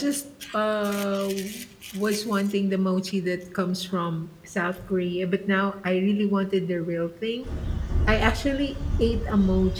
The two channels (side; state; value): both; identical; correlation 1.00